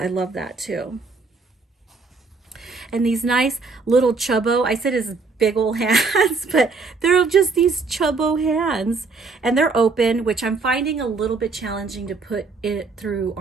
love that too. And these nice little chubbo, I said his big old hands, but they're just these chubbo hands. And they're open, which I'm finding a little bit challenging to put it through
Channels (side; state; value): left; quieter; 4.2 dB